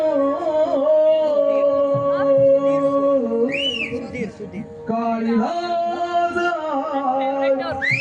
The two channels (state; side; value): identical; both; correlation 1.00